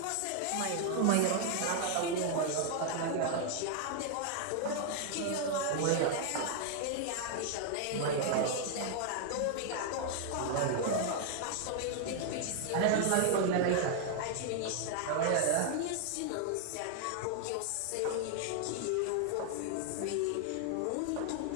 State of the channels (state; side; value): different; both; correlation 0.00